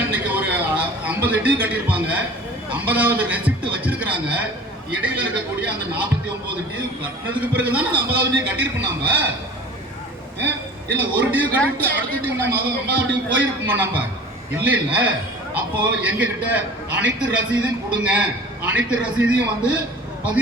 இன்னைக்கு ஒரு 50 டியூ கட்டியிருப்பாங்க, 50வது ரெசிப்ட் வச்சிருக்கிறாங்க. இடையில இருக்கக்கூடிய அந்த 49 டியூ கட்டினதுக்கு பிறகுதான் அந்த 50வது டியூ கட்டியிருப்போம். நாம இல்ல ஒரு டியூ கட்டிட்டு அடுத்த டியூ நம்ம 50வது டியூ போயிருப்போமா? நம்ம இல்ல இல்ல. அப்போ எங்க கிட்ட அனைத்து ரசீதையும் கொடுங்க, அனைத்து ரசீதையும் வந்து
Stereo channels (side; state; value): both; normal; correlation 0.42